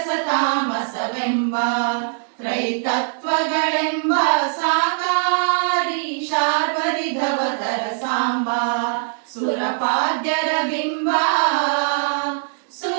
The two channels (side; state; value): left; silent; digital silence